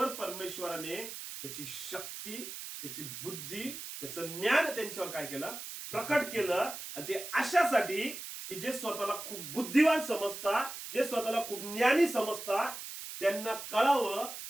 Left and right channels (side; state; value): right; noise; hiss, 9 dB below the sound